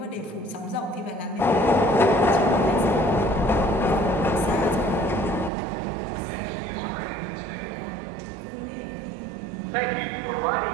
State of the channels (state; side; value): drops out; left; at 5.5 s